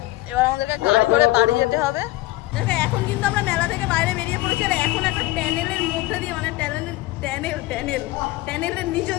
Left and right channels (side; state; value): right; quieter; 18.0 dB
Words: এবার আমাদেরকে গাড়ি করে বাড়ি যেতে হবে। দেখো এখন কিন্তু আমরা মেলা থেকে বাইরে বেরিয়ে পড়েছি, আর এখন একটা ট্যানেলের মধ্যে দিয়ে, মানে ট্যানেলের নিচে